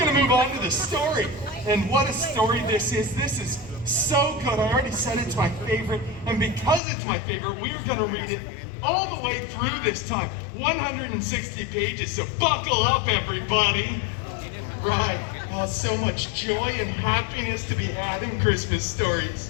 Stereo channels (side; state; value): right; drops out; at 6.8 s